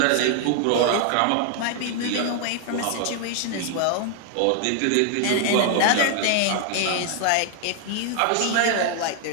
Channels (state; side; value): different; both; correlation 0.00